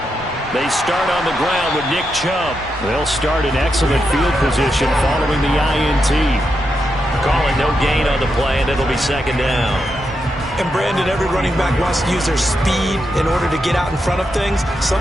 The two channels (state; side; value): normal; both; correlation 0.84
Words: They start on the ground with Nick Chubb. They'll start in excellent field position following the INT. Calling no gain on the play, and it'll be second down. And Brandon, every running back wants to use their speed in order to get out in front of things.